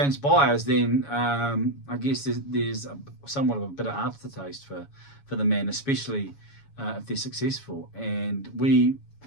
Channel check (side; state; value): right; late; 7.1 ms